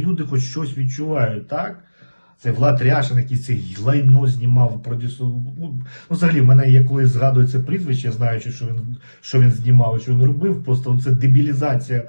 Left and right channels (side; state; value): both; inverted; correlation -1.00